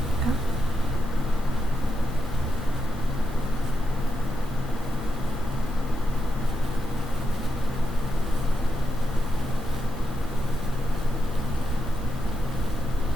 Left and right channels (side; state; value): both; normal; correlation 0.85